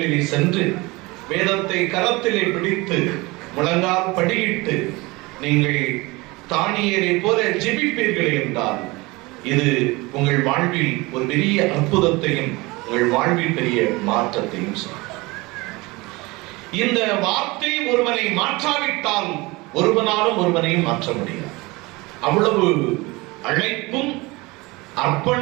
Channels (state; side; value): quieter; left; 23.3 dB